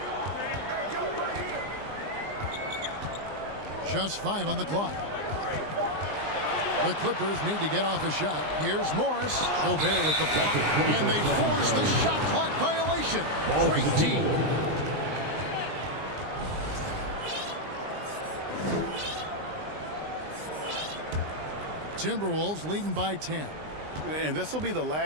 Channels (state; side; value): late; left; 20 ms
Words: Just 5 on the clock. The Clippers need to get off a shot. Here's Morris. Gobert with the block. And they force the shot clock violation. Great team. Timberwolves leading by 10. And this will be the